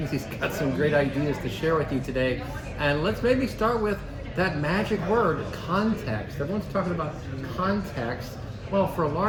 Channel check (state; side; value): identical; both; correlation 1.00